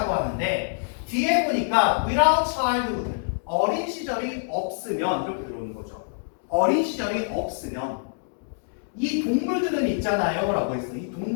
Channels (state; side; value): silent; right; digital silence